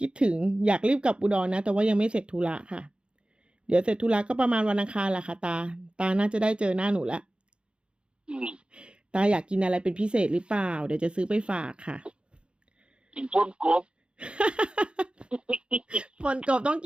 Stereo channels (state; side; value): late; left; 0.056 ms